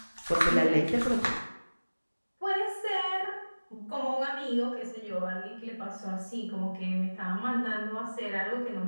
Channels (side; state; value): both; inverted; correlation -1.00